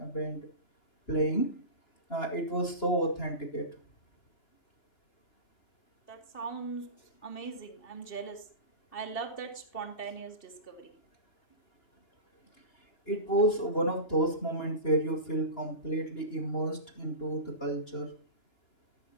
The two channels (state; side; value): late; right; 2.9 ms